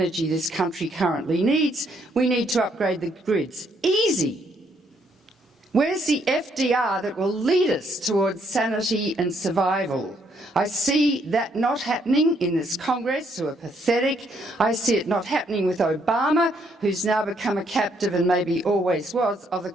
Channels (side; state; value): both; normal; correlation 0.71